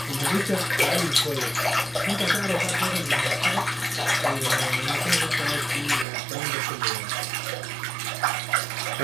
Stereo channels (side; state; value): left; drops out; at 6.1 s